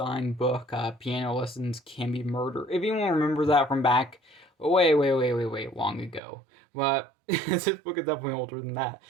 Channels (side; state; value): left; drops out; at 6.2 s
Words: book, Piano Lessons Can Be Murder. If anyone remembers that from back way long ago. But this book is definitely older than that.